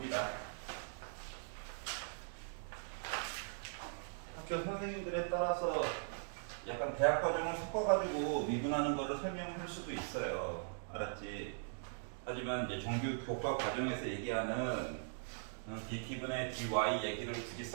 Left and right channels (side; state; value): left; silent; digital silence